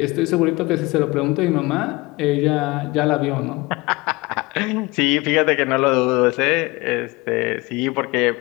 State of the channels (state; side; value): quieter; right; 23.1 dB